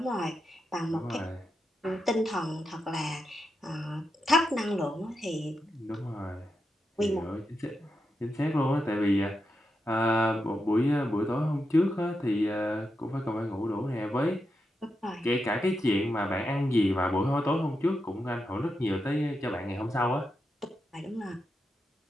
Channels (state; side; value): normal; both; correlation 0.86